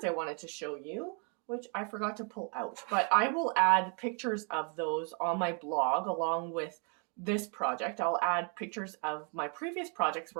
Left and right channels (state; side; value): quieter; left; 38.3 dB